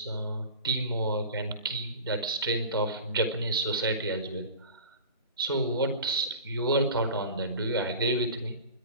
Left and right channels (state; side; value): inverted; both; correlation -0.36